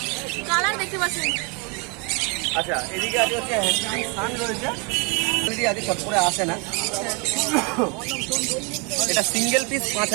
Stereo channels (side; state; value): left; quieter; 32.3 dB